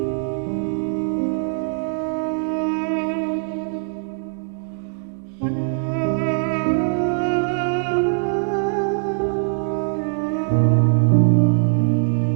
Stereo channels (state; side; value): silent; left; digital silence